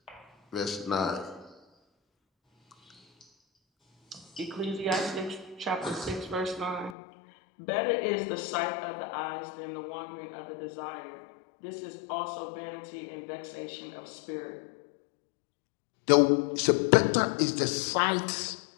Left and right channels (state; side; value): drops out; right; at 7.0 s